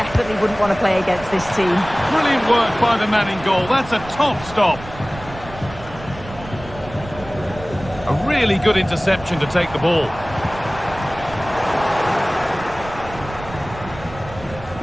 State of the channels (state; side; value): noise; right; rumble, 15 dB below the sound